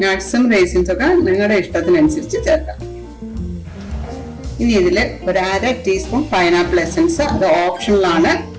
നിങ്ങളുടെ ഇഷ്ടത്തിനനുസരിച്ച് ചേർക്കാം. ഇനി ഇതില് ഒരു 1/2 ടീസ്പൂൺ പൈനാപ്പിൾ എസൻസ്. അത് ഓപ്ഷണലാണ്.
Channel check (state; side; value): identical; both; correlation 1.00